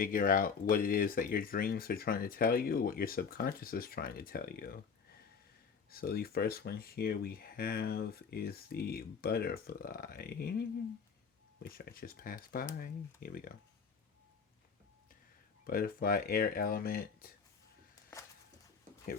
out what it is that your dreams are trying to tell you, what your subconscious is trying to tell you. So the first one here we have is the butterfly, which I just passed by. Here we go. Butterfly, air element. Here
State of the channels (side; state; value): right; quieter; 6.0 dB